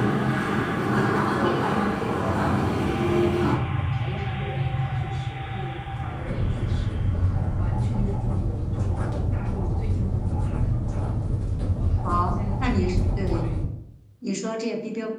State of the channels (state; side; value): identical; both; correlation 1.00